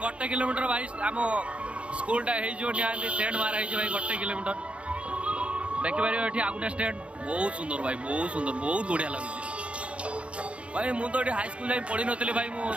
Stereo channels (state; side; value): late; left; 0.060 ms